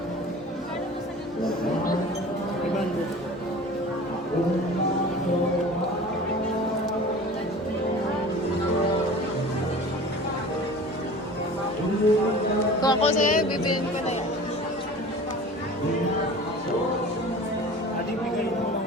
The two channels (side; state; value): both; normal; correlation 0.40